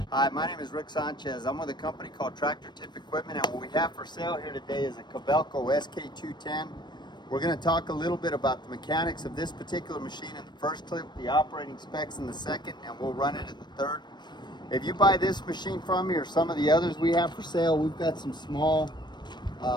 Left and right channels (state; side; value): late; right; 0.21 ms